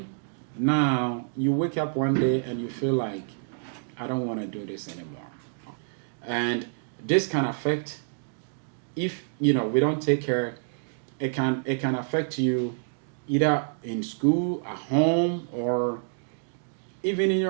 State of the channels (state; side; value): silent; left; digital silence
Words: now you wake up one day and you feel like, I don't want to do this anymore. And this can affect, if we don't take care, it can affect you either in school, at home, or even in